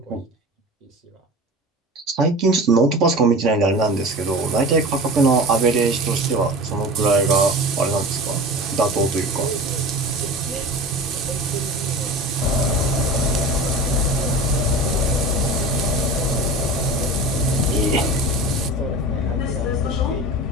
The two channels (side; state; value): both; normal; correlation 0.34